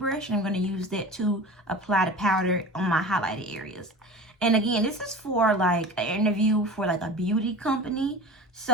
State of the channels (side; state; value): both; normal; correlation 0.35